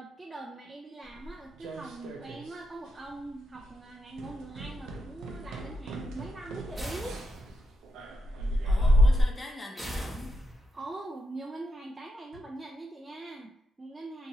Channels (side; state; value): both; normal; correlation 0.83